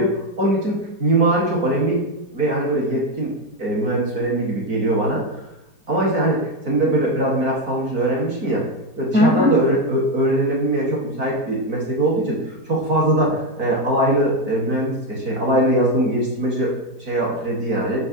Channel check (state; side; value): late; left; 4.5 ms